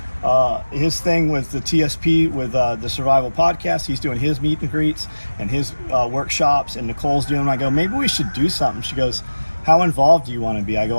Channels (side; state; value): both; inverted; correlation -1.00